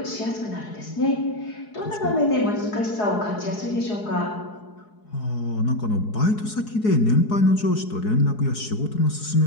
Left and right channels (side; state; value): right; late; 4.7 ms